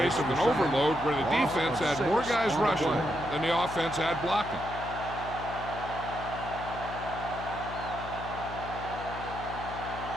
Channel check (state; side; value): noise; left; hum, 10 dB below the sound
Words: of an overload where the defense had more guys rushing than the offense had blocking.